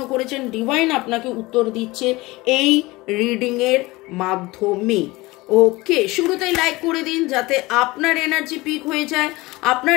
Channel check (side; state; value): right; quieter; 21.2 dB